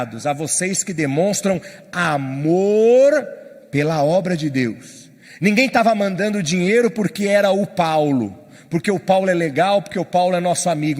a vocês que demonstram amor pela obra de Deus. Ninguém estava mandando dinheiro porque era o Paulo, porque o Paulo é legal, porque o Paulo é nosso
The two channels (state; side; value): identical; both; correlation 1.00